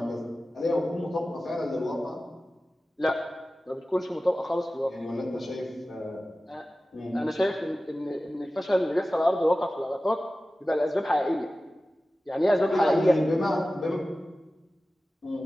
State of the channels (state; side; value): normal; both; correlation 0.96